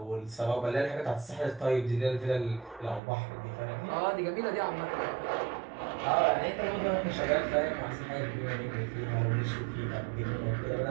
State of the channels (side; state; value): left; drops out; at 3.0 s